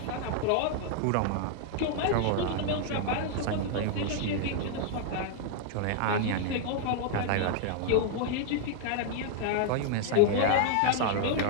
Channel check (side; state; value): both; different; correlation -0.01